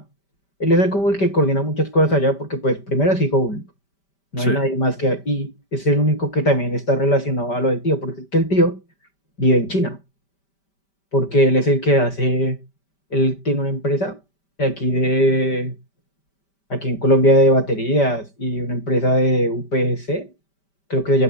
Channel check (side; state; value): right; late; 5.1 ms